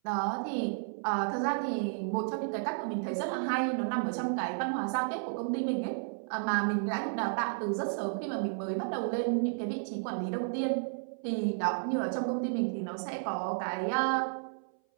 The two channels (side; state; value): left; silent; 56 dB below the other